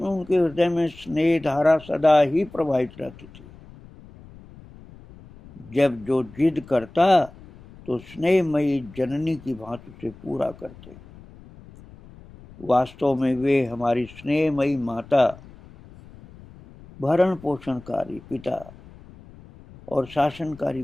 उनके हृदय में स्नेह धारा सदा ही प्रवाहित रहती थी। जब जो जिद करता तो स्नेहमयी जननी की भांति से पूरा करते। वास्तव में वे हमारी स्नेहमयी माता, भरण पोषणकारी पिता और शासनकारी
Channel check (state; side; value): noise; left; rumble, 21 dB below the sound